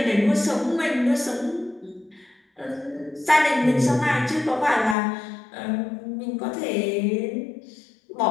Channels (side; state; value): right; drops out; at 5.0 s